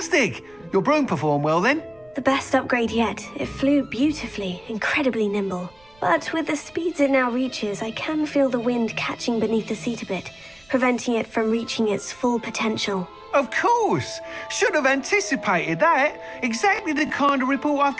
Your broom performed well then? The best upgrade yet. It flew beautifully, incredibly nimble. But with the speeds it now reaches, I can feel the wind catching beneath the seat a bit, preventing it from reaching its full potential. Of course! Should have anticipated that. Exactly the kind of report I've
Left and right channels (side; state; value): right; noise; rumble, 30 dB below the sound